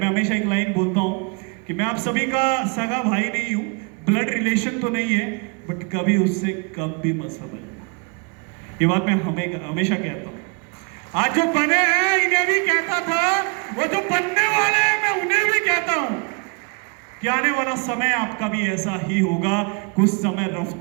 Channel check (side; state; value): left; quieter; 34.4 dB